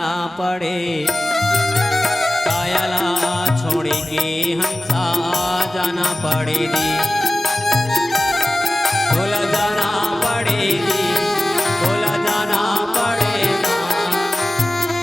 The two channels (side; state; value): both; normal; correlation 0.96